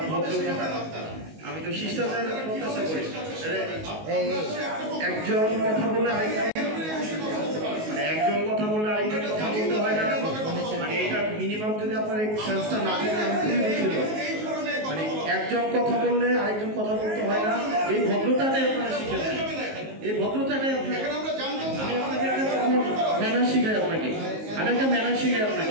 ভদ্রতা আমি তো শিষ্টাচার প্রত্যাশা করি। একজন কথা বললে আরেকজন মানে একজন কথা বললে আরেকজন কথা বলতে হয় না মানে এটা মিনিমাম যদি আপনার এই সেন্সটা না থাকে আমি খুবই দুঃখিত। মানে একজন কথা বললে আরেকজন কথা বলতে হয় না এই ভদ্রতাটাই আপনারা শিখেছেন। এই ভদ্রতাটাই আপনার আমি আপনাকে একটা ম্যানার শিখাই আপনাকে আমি একটা ম্যানার শিখাই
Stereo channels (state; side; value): late; left; 19 ms